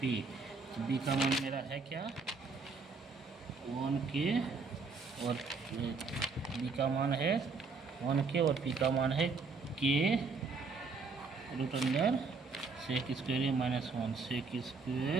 पी। तो बी का मान मेरा है क्या 1 के और बी का मान है 1 के और पी का मान है के root under sec square A minus 1। Sec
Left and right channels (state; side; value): quieter; left; 4.4 dB